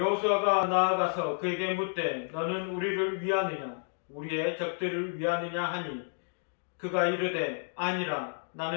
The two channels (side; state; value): right; silent; digital silence